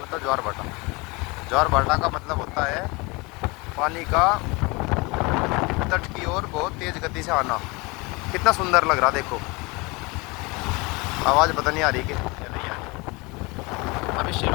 ज्वार भाटा। ज्वार भाटा का मतलब होता है पानी का तट की ओर बहुत तेज गति से आना। कितना सुंदर लग रहा, देखो। आवाज़ पता नहीं आ रही कि नहीं आ रही। अभी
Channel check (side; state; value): right; quieter; 26.0 dB